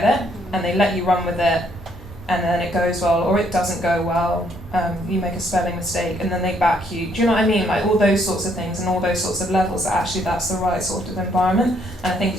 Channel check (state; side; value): normal; both; correlation 0.69